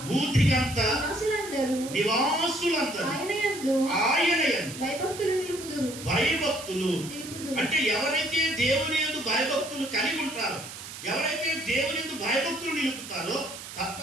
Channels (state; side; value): noise; right; hiss, 12 dB below the sound